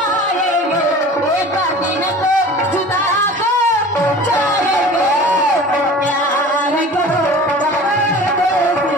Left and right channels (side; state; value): both; normal; correlation 0.41